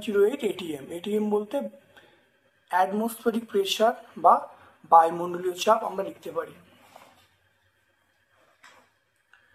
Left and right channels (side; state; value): both; identical; correlation 1.00